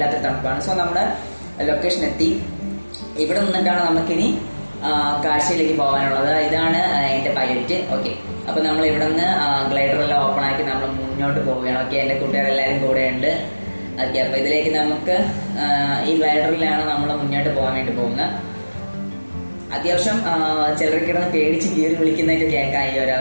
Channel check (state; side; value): inverted; both; correlation -1.00